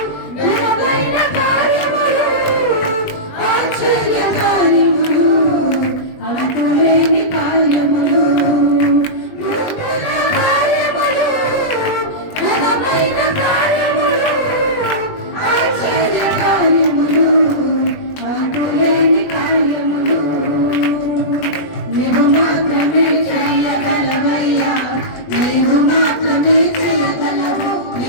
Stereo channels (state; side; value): late; right; 20 ms